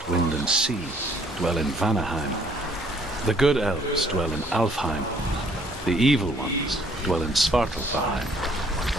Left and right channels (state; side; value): normal; both; correlation 0.62